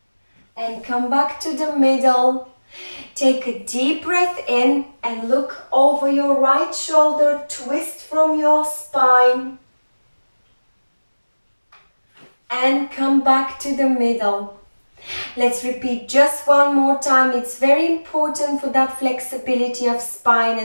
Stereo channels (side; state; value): both; inverted; correlation -1.00